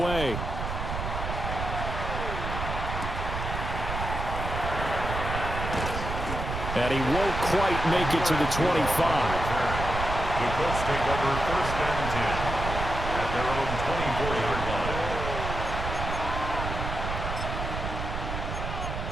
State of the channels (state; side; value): noise; right; rumble, 4 dB below the sound